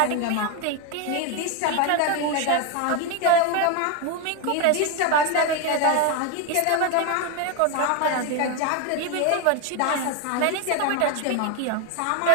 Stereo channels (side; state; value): both; different; correlation 0.02